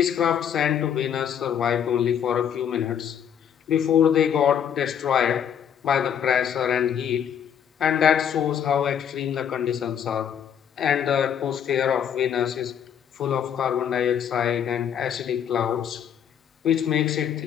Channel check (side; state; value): right; quieter; 8.6 dB